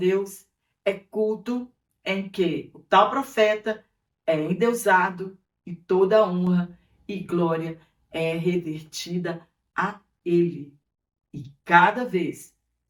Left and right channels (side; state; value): both; identical; correlation 1.00